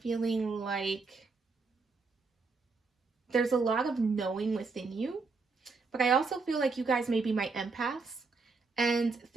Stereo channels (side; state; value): left; quieter; 4.3 dB